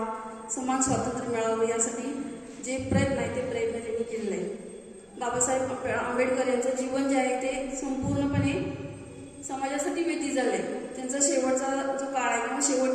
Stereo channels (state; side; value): identical; both; correlation 1.00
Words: समान स्वातंत्र्य मिळावं यासाठी जे प्रयत्न आहे ते प्रयत्न त्यांनी केलेले आहे. बाबासाहेब आंबेडकर यांचं जीवन जे आहे ते संपूर्णपणे समाजासाठी व्यतीत झालं आहे. त्यांचा शेवटचा जो काळ आहे किंवा